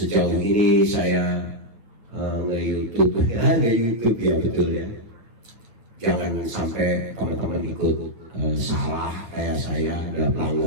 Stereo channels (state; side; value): late; left; 9.3 ms